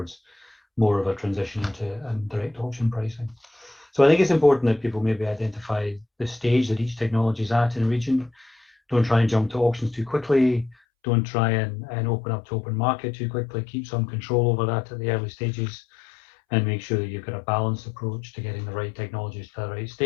more of a transition into direct auction pricing. So I think it's important that people maybe identify the stage that each technology is at in a region. Don't try and jump to auctions too quickly. Don't try and open up to open market too quickly. Keep some control over that at the early stages and make sure that you've got a balanced approach to getting the right technologies to the right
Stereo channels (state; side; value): drops out; right; at 10.8 s